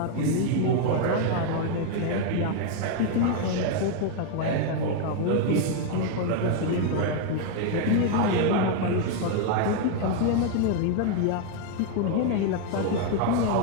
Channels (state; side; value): different; both; correlation 0.00